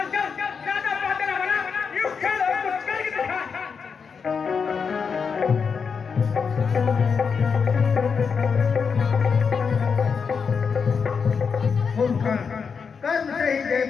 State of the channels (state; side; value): quieter; right; 5.9 dB